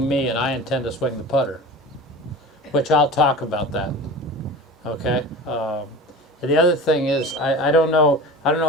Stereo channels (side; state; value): both; normal; correlation 0.34